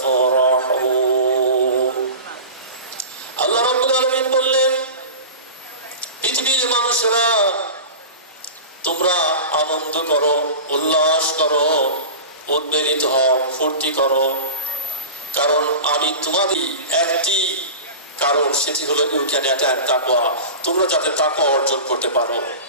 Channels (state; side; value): inverted; both; correlation -0.31